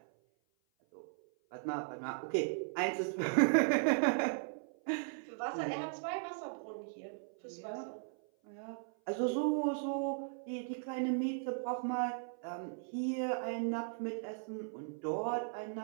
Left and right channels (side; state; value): left; silent; 53 dB below the other